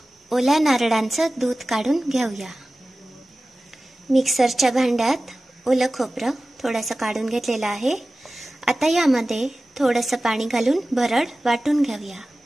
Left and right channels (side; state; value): both; normal; correlation 0.96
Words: ओल्या नारळांचं दूध काढून घेऊया. मिक्सरच्या भांड्यात ओलं खोबरं थोडंसं काढून घेतलेलं आहे. आता यामध्ये थोडंसं पाणी घालून भरड वाटून घेऊया.